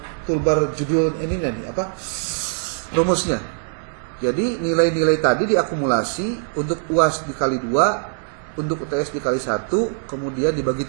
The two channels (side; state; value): left; silent; digital silence